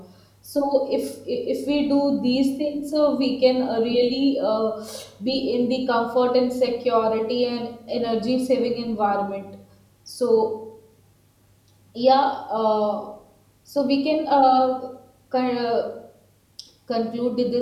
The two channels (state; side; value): identical; both; correlation 1.00